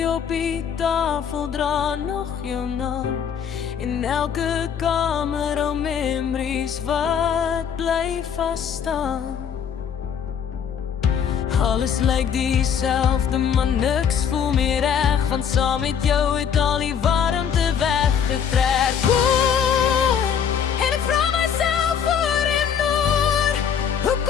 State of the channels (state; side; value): quieter; right; 7.8 dB